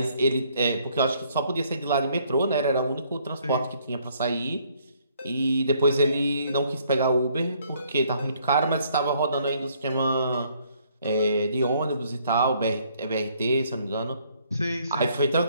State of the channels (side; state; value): both; inverted; correlation -0.66